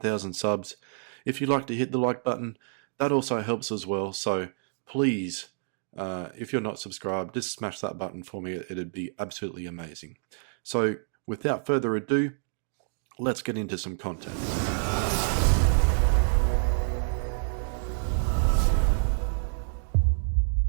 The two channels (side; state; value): left; silent; digital silence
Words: subs. If you'd like to hit the like button, that also helps as well. So please, if you're not subscribed, just smash that button for me. It'd be absolutely amazing. So without further ado, let's get into some content.